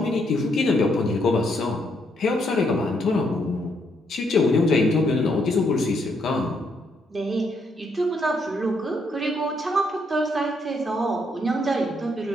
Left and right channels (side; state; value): both; normal; correlation 0.74